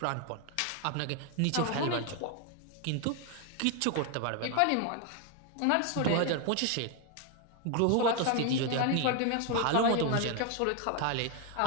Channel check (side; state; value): both; different; correlation 0.01